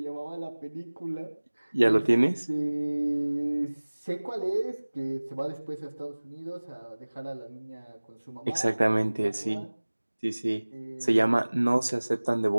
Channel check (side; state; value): both; inverted; correlation -1.00